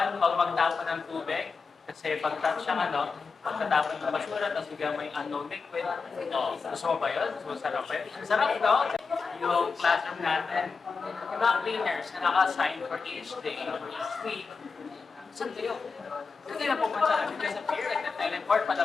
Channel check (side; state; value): right; quieter; 4.8 dB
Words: huwag magtapon ng tubig. Kasi pag pagkatapon ng basura, tapos bigyan mo yung unknown liquid. Gusto mo ba yun? Gusto mo sarap ba yun? Sarap no? Yung classroom natin, yung mga cleaners na naka-assign for each day or each week, saan kayo? Kasi na pupunta namin kayo sa pier, like nag-teleport,